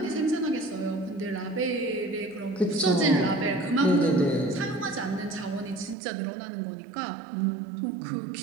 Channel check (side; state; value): left; drops out; at 6.0 s